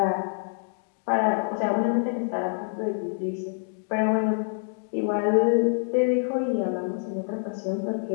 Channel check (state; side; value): silent; right; digital silence